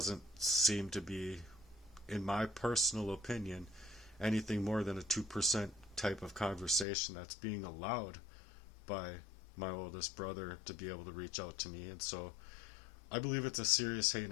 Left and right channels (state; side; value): drops out; right; at 6.9 s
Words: seem to be, in my personal opinion, anything more than a 2% type of conversation that's being allowed by my oldest brother to be able to reach out to me. And so I believe it's a serious,